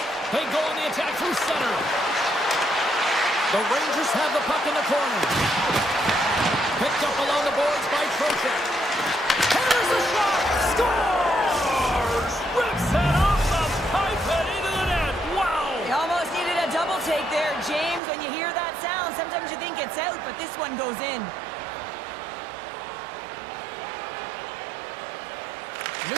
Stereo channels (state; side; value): drops out; left; at 18.0 s